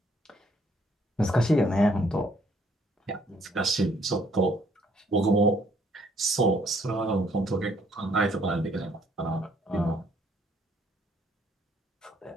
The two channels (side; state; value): both; normal; correlation 0.66